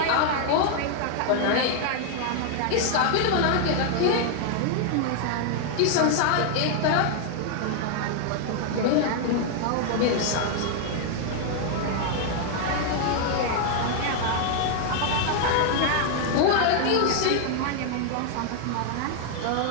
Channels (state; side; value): different; both; correlation 0.00